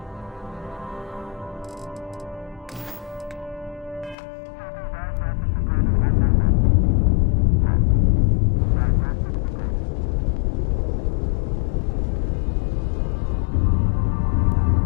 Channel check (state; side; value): drops out; right; at 4.2 s